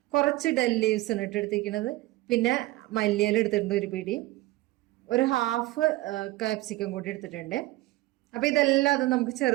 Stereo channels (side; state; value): left; quieter; 18.5 dB